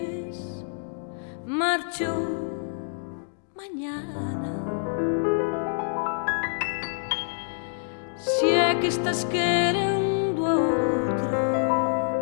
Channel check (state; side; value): silent; right; digital silence